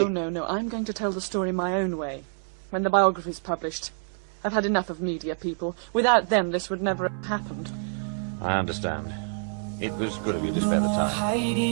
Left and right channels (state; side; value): silent; left; digital silence